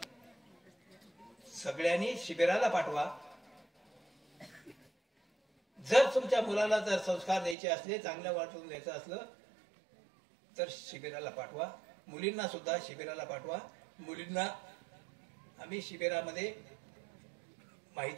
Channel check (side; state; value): left; drops out; at 7.6 s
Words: सगळ्यांनी शिबिराला पाठवा. जर तुमच्या मुलाला जर संस्कार द्यायचे असले, चांगल्या वाटून द्यायचं असलं तर शिबिराला पाठवा. मुलींना सुद्धा शिबिराला पाठवा. मुलींना आम्ही शिबिरामध्ये